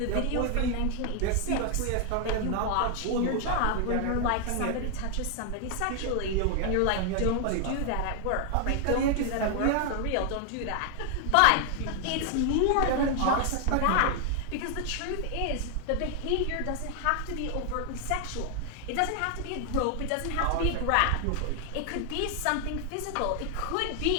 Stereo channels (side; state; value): both; different; correlation 0.00